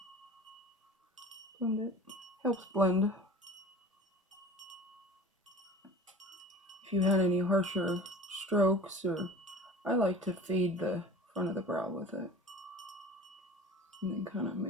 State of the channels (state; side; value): normal; both; correlation 0.41